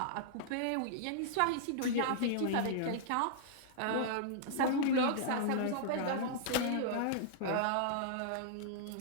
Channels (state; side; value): different; both; correlation -0.01